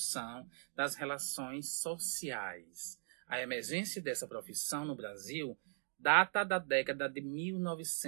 das relações sociais. A emergência dessa profissão no Brasil data da década de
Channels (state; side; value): silent; left; digital silence